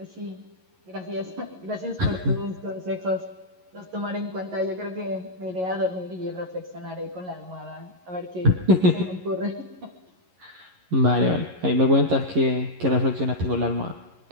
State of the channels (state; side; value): late; left; 11 ms